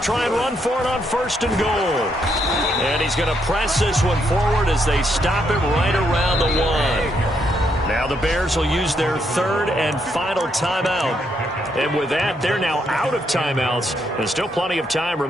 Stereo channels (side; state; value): both; normal; correlation 0.76